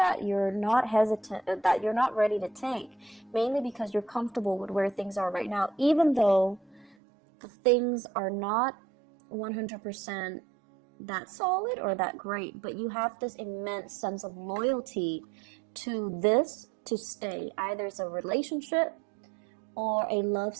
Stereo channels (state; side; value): drops out; left; at 7.0 s